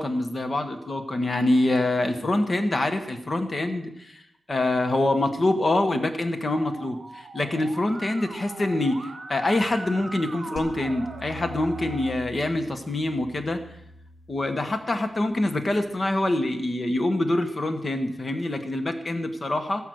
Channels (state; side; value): normal; both; correlation 0.93